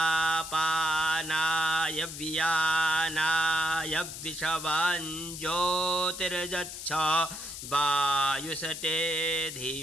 वियानाय विषवं ज्योतिर्यच्छ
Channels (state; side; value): noise; left; hiss, 9 dB below the sound